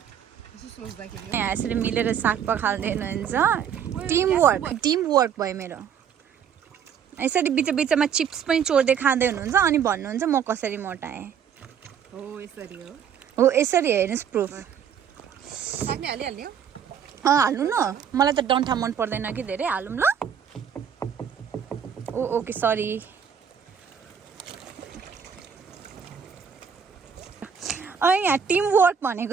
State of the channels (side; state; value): left; quieter; 7.8 dB